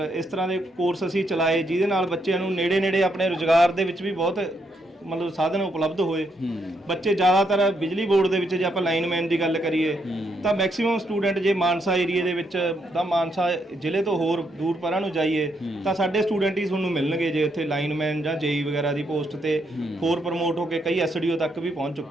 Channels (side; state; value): both; normal; correlation 0.77